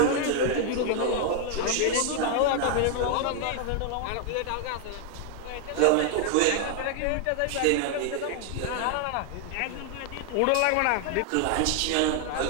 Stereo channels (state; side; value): different; both; correlation 0.00